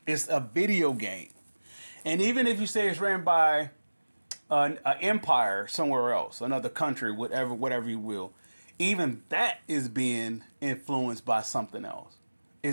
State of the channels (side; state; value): both; inverted; correlation -1.00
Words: It's a video game. And even if you say it's ran by an empire somewhere else, another country, whatever you will, even that is being influenced by something else.